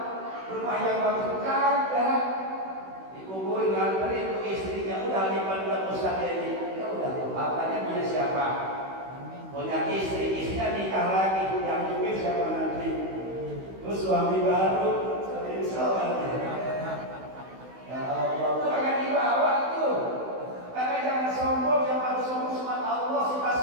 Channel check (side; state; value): left; late; 16 ms